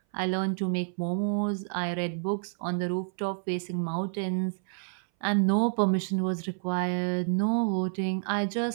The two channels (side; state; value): left; silent; 59 dB below the other